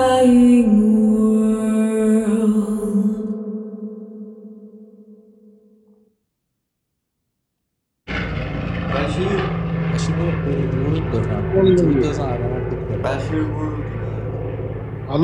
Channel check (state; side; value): identical; both; correlation 1.00